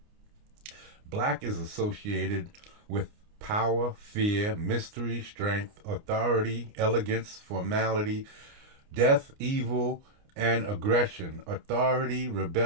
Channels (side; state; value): left; late; 29 ms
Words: Black is associated with power, fear, mystery, strength, authority, elegance, formality, death, evil, and aggression, authority,